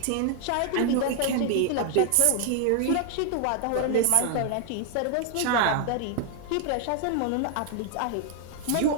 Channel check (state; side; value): different; both; correlation 0.00